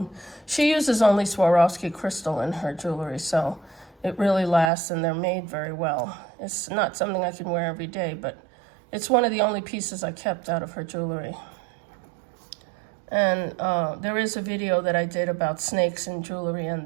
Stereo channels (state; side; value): drops out; left; at 4.7 s